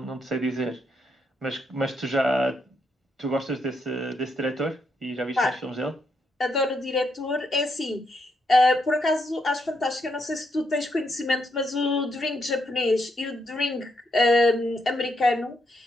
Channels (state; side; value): normal; both; correlation 0.78